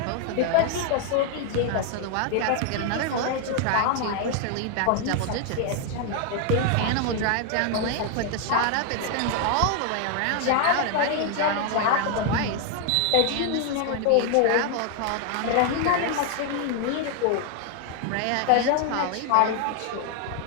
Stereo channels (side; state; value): both; different; correlation 0.00